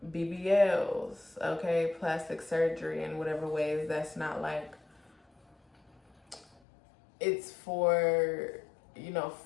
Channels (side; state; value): right; drops out; at 6.5 s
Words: BBLs, okay, plastic surgery in whatever ways that's not like, it's for, you know,